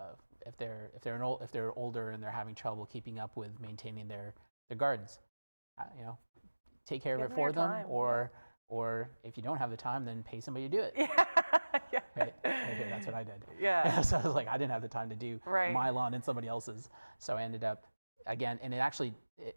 if they're older and they're having trouble keeping up with maintaining their gardens, you know, take care of it for them, or if you don't have the time, then pay somebody to do it. Yeah. Right here, that's what I did. Yeah. So I was like, I didn't have the time to do my lawn and somebody else's, so I ended up again, and it actually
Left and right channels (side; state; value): both; inverted; correlation -1.00